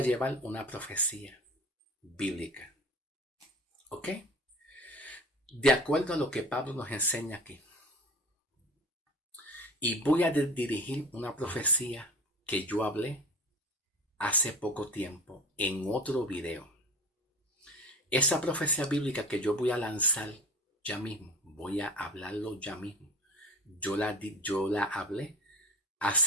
bíblica. ¿Ok? De acuerdo a lo que Pablo nos enseña aquí. Y voy a dirigir una profecía que yo hablé hace poco tiempo en otro video. Esa profecía bíblica que yo voy a lanzar ya mismo, voy a hablarlo ya mismo. Yo la hablé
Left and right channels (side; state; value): both; normal; correlation 0.37